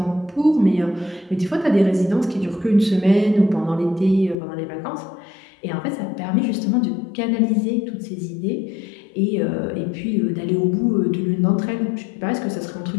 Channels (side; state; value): right; drops out; at 4.4 s